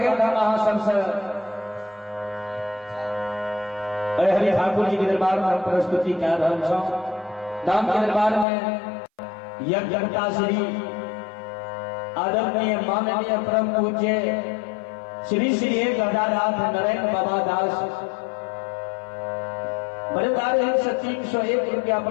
था महासन से हरि ठाकुर जी के दरबार में हम प्रस्तुति कर रहे हैं। धाम के दरबार में यज्ञता श्री आदरणीय माननीय परम पूज्य श्री श्री 1008 नरेंद्र बाबा दास बड़े 301 रुपया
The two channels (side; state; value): right; drops out; at 8.5 s